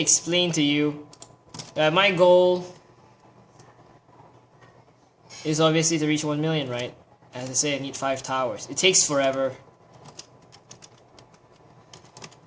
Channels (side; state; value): both; identical; correlation 1.00